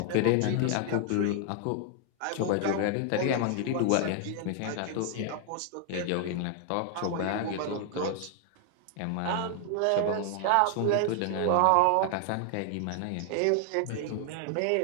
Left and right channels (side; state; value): both; different; correlation 0.00